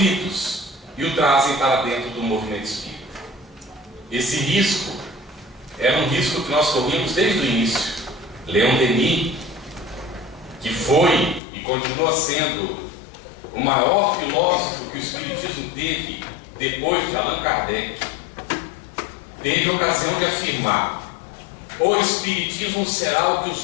e o trazem para dentro do movimento espírita. Esse risco era um risco que nós corríamos desde o início. Leon Denis, que foi e continua sendo o maior filósofo que o Espiritismo teve depois de Allan Kardec, teve a ocasião de afirmar: o Espiritismo será o que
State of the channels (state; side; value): drops out; right; at 11.4 s